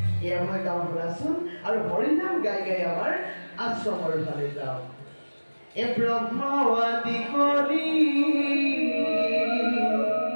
এয়া মই গাঁও শুনাচোন আৰু হৰিনাম গাই গাই আমাৰ আশ্ৰমৰ ফালে যাওঁ। এ ব্ৰহ্ম আদি কৰি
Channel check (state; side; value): inverted; both; correlation -1.00